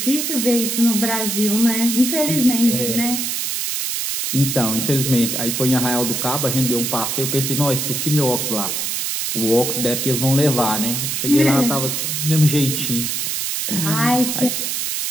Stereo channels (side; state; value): right; noise; hiss, 1 dB below the sound